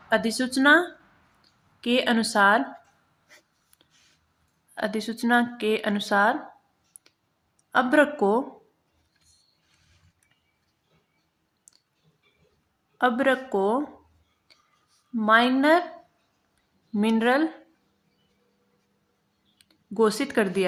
के अनुसार अब्रक को माइनर मिनरल घोषित कर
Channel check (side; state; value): both; identical; correlation 1.00